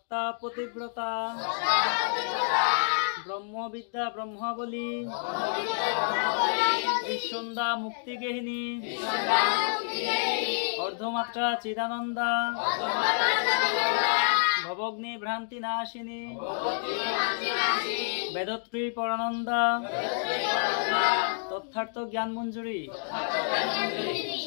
পতিব্রতা ব্রহ্মবিদ্যা ব্রহ্মাবলী বিসন্ধ্যা মুক্তিগেহিনী অর্ধমাত্রা চিদানন্দা ভবগ্নি ভ্রান্তি নাশিনী বেদত্রী পরানন্দা তথার্থ জ্ঞান মঞ্জুরি।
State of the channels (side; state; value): right; silent; digital silence